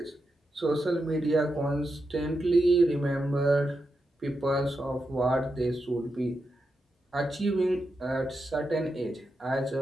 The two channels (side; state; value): both; normal; correlation 0.87